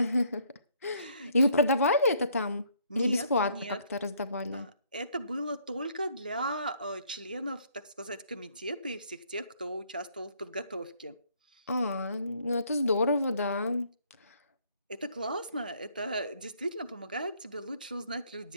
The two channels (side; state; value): both; inverted; correlation -0.65